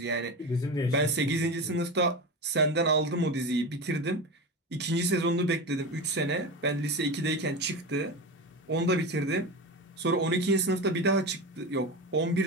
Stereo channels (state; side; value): normal; both; correlation 0.24